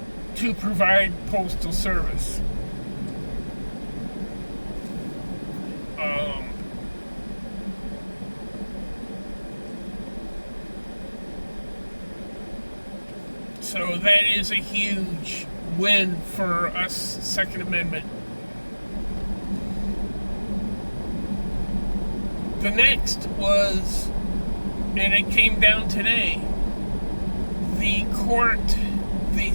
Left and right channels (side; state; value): both; inverted; correlation -1.00